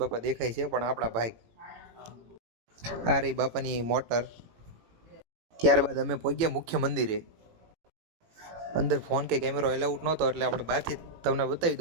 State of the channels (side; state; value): left; late; 18 ms